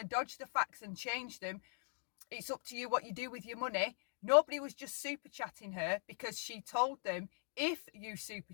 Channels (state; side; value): silent; right; digital silence